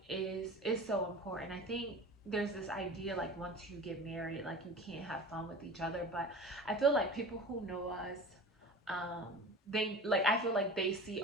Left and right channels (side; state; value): both; normal; correlation 0.36